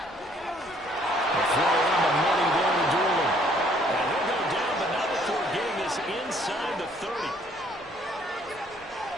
A throw on the money there to Doolin. And he'll go down, but not before getting this inside the 30.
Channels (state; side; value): normal; both; correlation 0.62